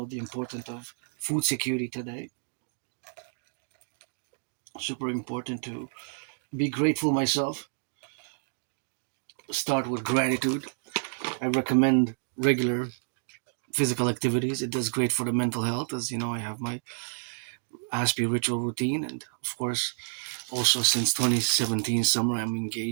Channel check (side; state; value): left; silent; 58 dB below the other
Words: the importance of food security today. Super important to be grateful myself. Start with gratitude. I recommend regular physical activities. It does great for the mental health. As you know, I have my Aspie ritual routine, and of course, also since 2017 summer, I'm